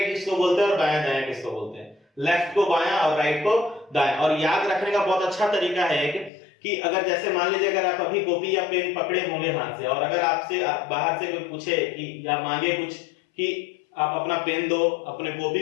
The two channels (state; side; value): drops out; right; at 6.3 s